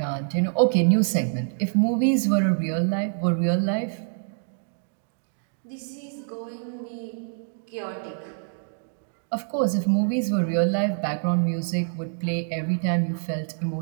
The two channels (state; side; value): silent; left; digital silence